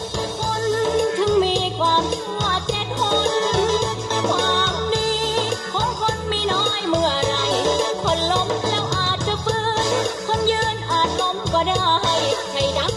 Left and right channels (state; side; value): identical; both; correlation 1.00